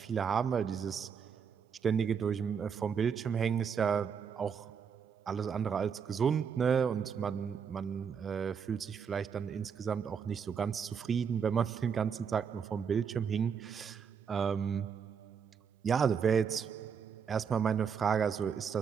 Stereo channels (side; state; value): left; quieter; 6.8 dB